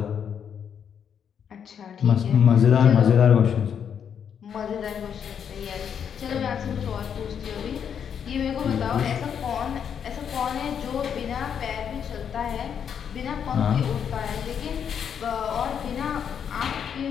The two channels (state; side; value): quieter; right; 7.9 dB